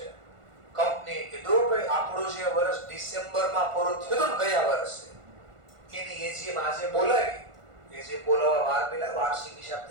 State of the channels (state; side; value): late; left; 1.5 ms